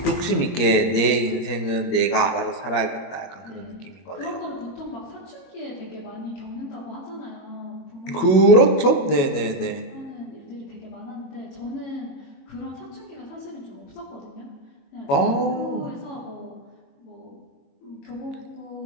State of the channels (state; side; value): late; right; 21 ms